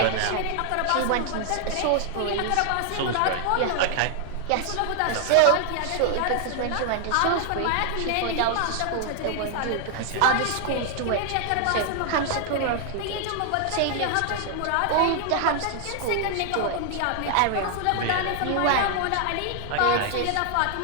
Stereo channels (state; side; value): different; both; correlation 0.00